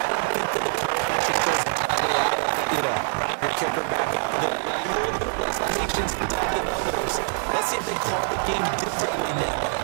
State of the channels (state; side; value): silent; left; 62 dB below the other